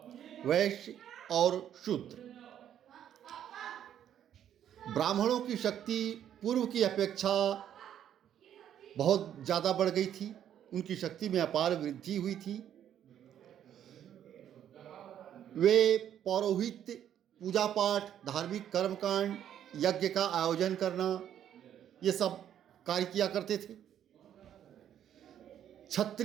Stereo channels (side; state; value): left; quieter; 10.2 dB